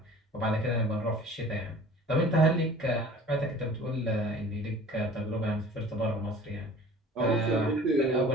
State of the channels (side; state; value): both; normal; correlation 0.46